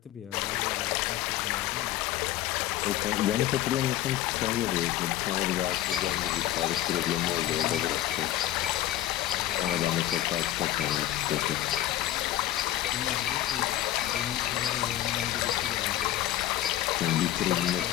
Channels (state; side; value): quieter; right; 13.8 dB